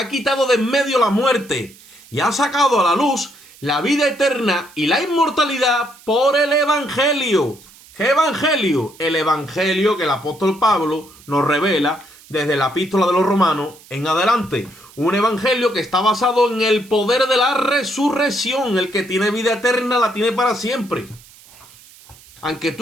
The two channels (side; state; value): right; noise; hiss, 24 dB below the sound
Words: quitado de en medio la muerte y ha sacado a la luz la vida eterna y la inmortalidad por el Evangelio. ¿Qué Evangelio? El Evangelio que el apóstol Pablo nos revela desde la epístola de los Romanos en adelante. Un evangelio que está basado en el poder de la resurrección. El que tiene vida eterna la tiene para siempre. Aunque